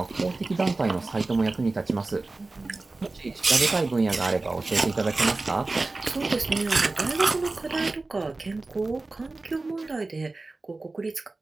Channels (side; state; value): left; quieter; 3.3 dB